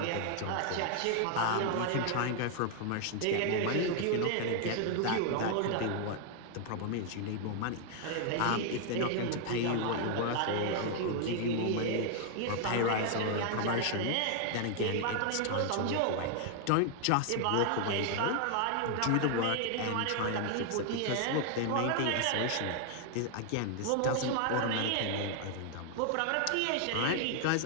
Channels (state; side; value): different; both; correlation 0.00